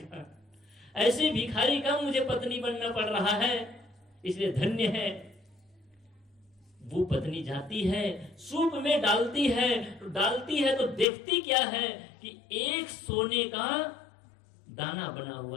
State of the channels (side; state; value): right; drops out; at 11.1 s